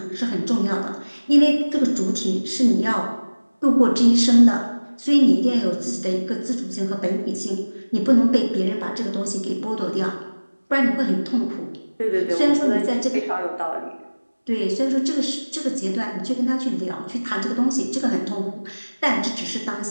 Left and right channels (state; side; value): inverted; both; correlation -1.00